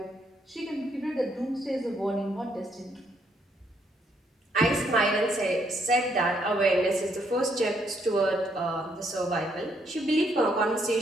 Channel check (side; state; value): both; normal; correlation 0.72